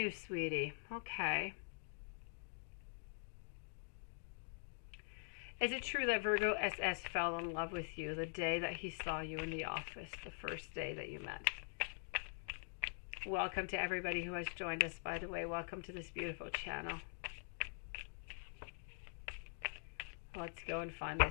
sweetie. Okay. Is it true that Virgo SS fell in love with you the day that he saw you in the office, the first day that you met? Welcome to everybody who has joined us, by the way. Welcome to this beautiful channel. Let's go and find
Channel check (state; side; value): silent; right; digital silence